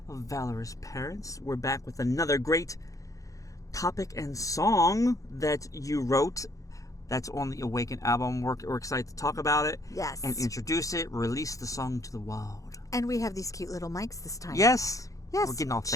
of Valorous Parents. We're back with another great topic and song that you wrote that's on the Awaken album. We're excited to talk about it. Yes. And introduce it, release the song to the world. And we have these cute little mics this time. Yes. Yes. We're getting all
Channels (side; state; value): right; late; 0.16 ms